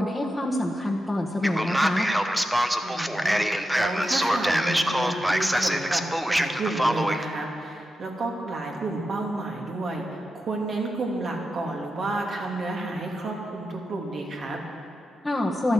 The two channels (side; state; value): both; normal; correlation 0.89